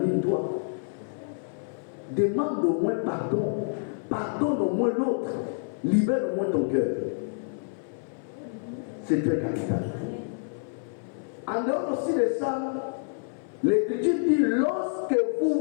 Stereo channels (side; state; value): right; silent; 56 dB below the other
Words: Demande au moins pardon. Pardonne au moins l'autre. Libère au moins ton cœur. C'est très capital. En dehors aussi de ça, l'Écriture dit lorsque